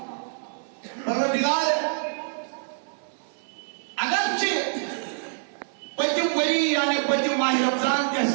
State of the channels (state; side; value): silent; left; digital silence